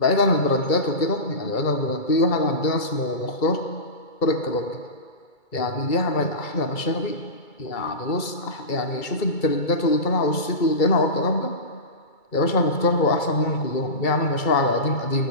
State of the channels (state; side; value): late; right; 2.3 ms